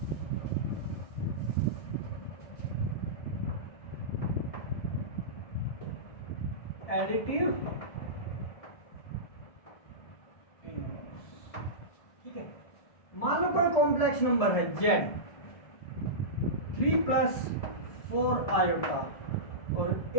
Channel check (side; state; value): right; late; 1.7 ms